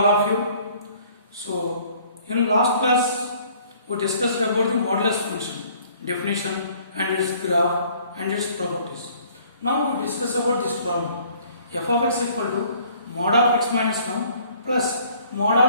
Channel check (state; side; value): inverted; both; correlation -0.57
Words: of you. So in last class we discussed about the modulus function, definition and its graph and its properties. Now we discuss about this problem. F of x equal to mod of x minus 1 plus mod